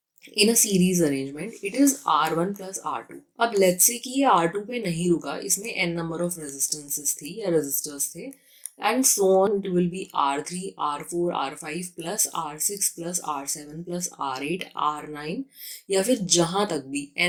in a series arrangement it is R1 plus R2। अब लेट्स से कि ये R2 पे नहीं रुका, इसमें n नंबर ऑफ रेजिस्टेंसेस थी या रेजिस्टर्स थे, and so on it will be R3 R4 R5 plus R6 plus R7 plus R8 R9, या फिर जहाँ तक भी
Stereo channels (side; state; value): both; identical; correlation 1.00